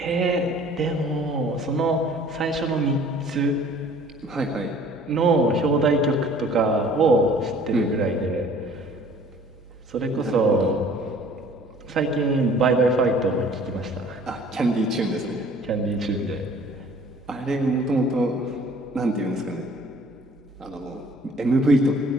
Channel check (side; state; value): both; normal; correlation 0.52